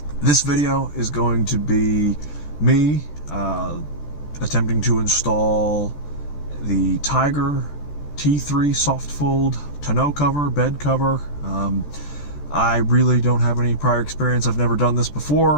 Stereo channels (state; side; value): late; right; 14 ms